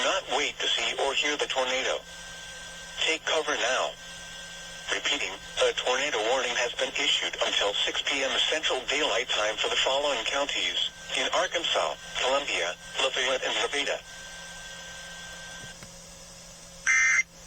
not wait to see or hear the tornado. Take cover now. Repeating, a tornado warning has been issued until 6 p.m. Central Daylight Time for the following counties: in Arkansas, Columbia, Lafayette, and Nevada.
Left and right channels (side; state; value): both; identical; correlation 1.00